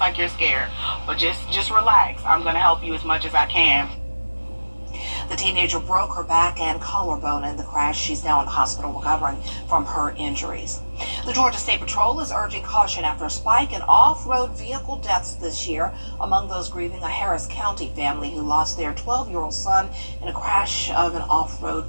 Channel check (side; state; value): both; inverted; correlation -1.00